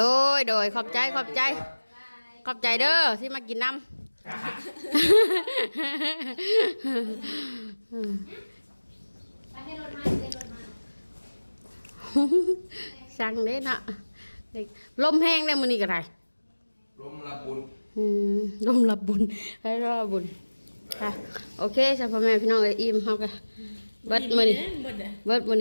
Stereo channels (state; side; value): inverted; both; correlation -1.00